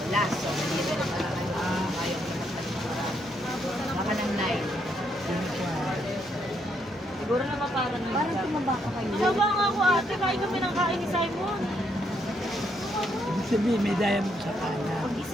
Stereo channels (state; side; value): normal; both; correlation 0.75